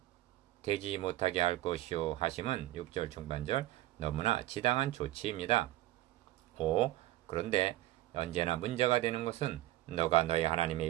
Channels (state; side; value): quieter; left; 16.0 dB